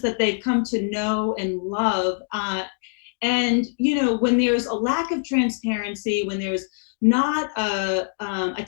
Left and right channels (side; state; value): right; silent; 63 dB below the other